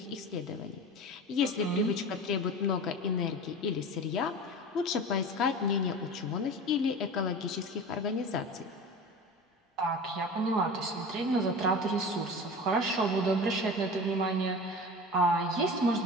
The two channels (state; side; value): normal; both; correlation 0.33